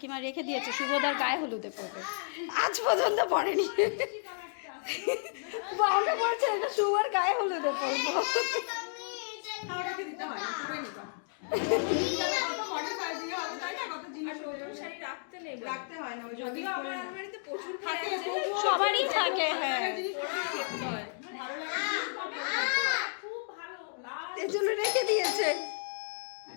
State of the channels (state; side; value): silent; right; digital silence